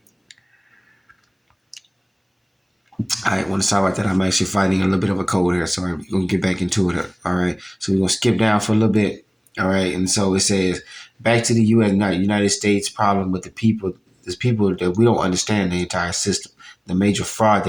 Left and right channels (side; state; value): both; identical; correlation 1.00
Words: I want to talk about that. I'm actually fighting a little bit of a cold here, so we're going to get back into it. All right. So we're going to skip down for a little bit. All right. And so it says, back to the United States problem with the people. There's people that we don't understand the entire system, the major fraud